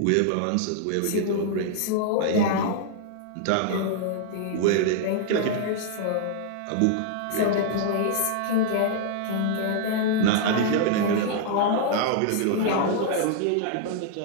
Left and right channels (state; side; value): different; both; correlation -0.01